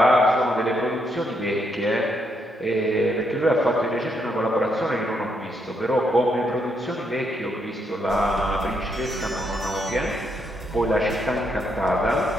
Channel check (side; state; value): both; normal; correlation 0.77